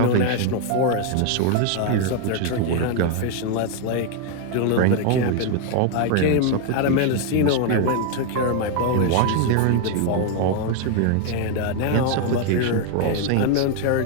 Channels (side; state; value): both; different; correlation 0.01